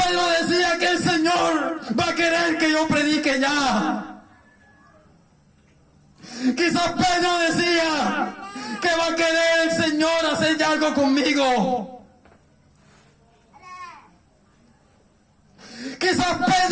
decía que el Señor va a querer que yo predique ya. Quizás Pedro decía que va a querer el Señor hacer ya algo conmigo. Quizás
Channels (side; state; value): both; identical; correlation 1.00